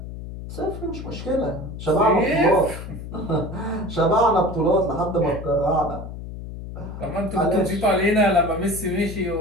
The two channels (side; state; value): left; noise; hum, 10 dB below the sound